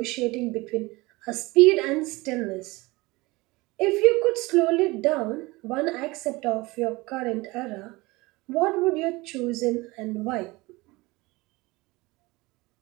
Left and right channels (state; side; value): quieter; left; 22.5 dB